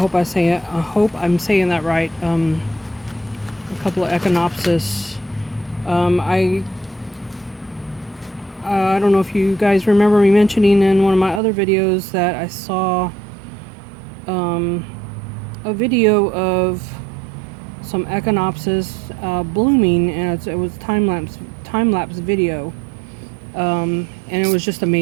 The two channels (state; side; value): drops out; left; at 11.4 s